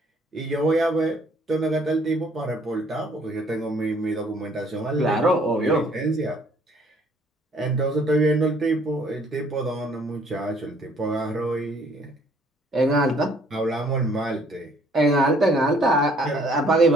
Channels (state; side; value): normal; both; correlation 0.61